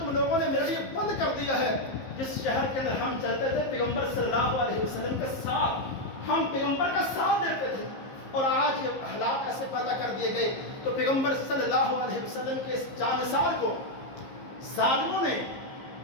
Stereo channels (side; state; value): right; late; 15 ms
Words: لوگوں نے میرے لیے بند کر دیا ہے جس شہر کے اندر ہم چلتے تھے پیغمبر صلی اللہ علیہ وسلم کے ساتھ۔ ہم پیغمبر کا ساتھ دیتے تھے، اور آج یہ حالات ایسے پیدا کر دیے گئے تو پیغمبر صلی اللہ علیہ وسلم کے اس جانثار کو ظالموں نے